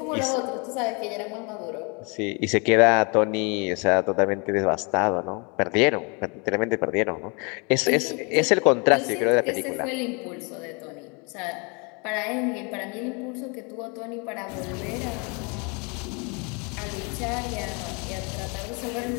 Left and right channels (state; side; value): quieter; right; 32.2 dB